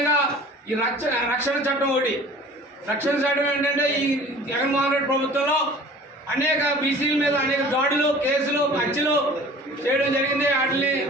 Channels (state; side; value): normal; both; correlation 0.45